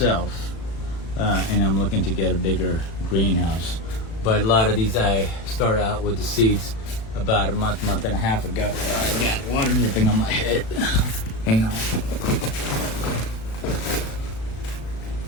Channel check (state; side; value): late; right; 36 ms